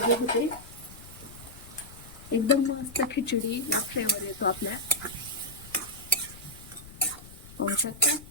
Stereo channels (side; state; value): left; noise; rumble, 18 dB below the sound